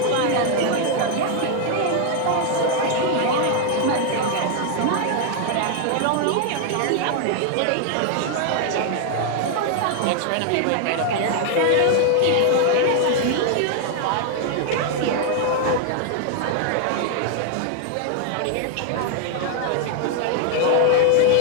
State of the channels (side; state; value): both; different; correlation 0.00